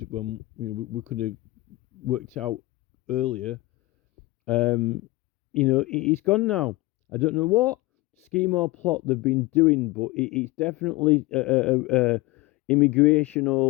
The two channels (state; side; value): quieter; right; 20.8 dB